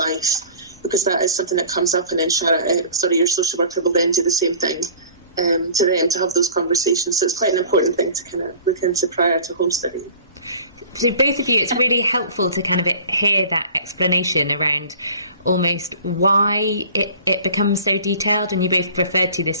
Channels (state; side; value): inverted; both; correlation -0.45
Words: because that is something that comes up, and then your social worker will then do the same thing to them, to have those conversations. So it's quite an important thing to kind of look into prior to Homestudy. So both of you, it's really helpful to kind of hear that explanation around almost why it becomes so detailed, and you both referred to this